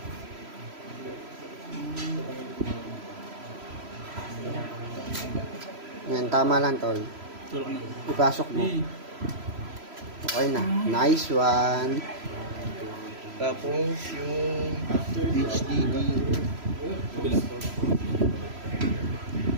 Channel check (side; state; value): left; late; 3.0 ms